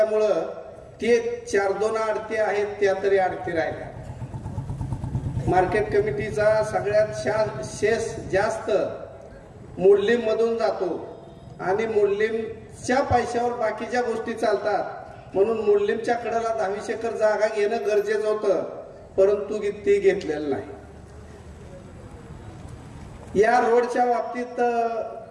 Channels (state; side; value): identical; both; correlation 1.00